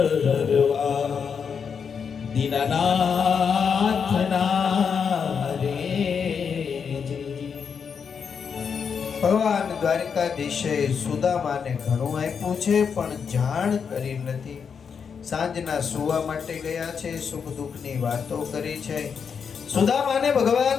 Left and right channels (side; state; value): right; quieter; 6.5 dB